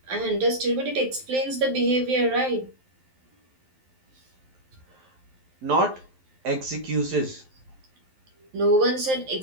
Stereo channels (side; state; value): left; late; 11 ms